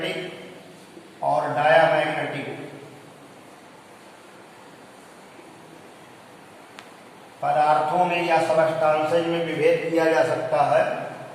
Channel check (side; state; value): both; identical; correlation 1.00